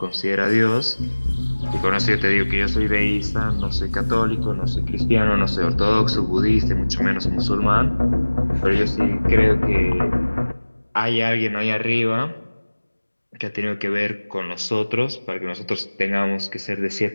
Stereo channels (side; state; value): both; inverted; correlation -1.00